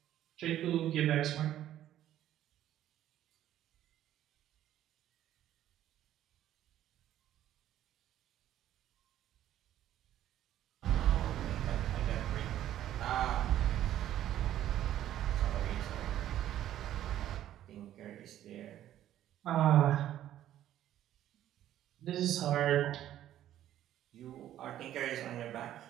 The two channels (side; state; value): left; quieter; 12.2 dB